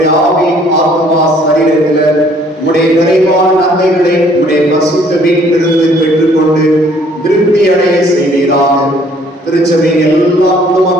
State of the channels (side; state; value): both; normal; correlation 0.60